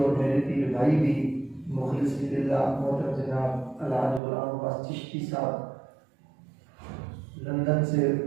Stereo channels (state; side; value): drops out; left; at 4.2 s